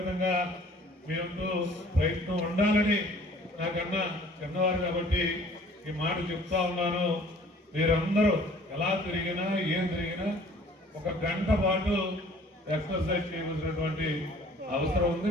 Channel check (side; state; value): both; normal; correlation 0.52